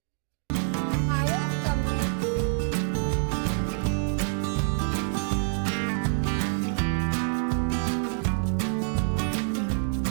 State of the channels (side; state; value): left; silent; digital silence